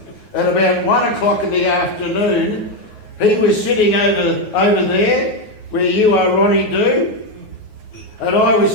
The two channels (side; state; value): right; late; 9.5 ms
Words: at about 1 o'clock in the afternoon. He was sitting over there, where you are, Ronnie Do, and I was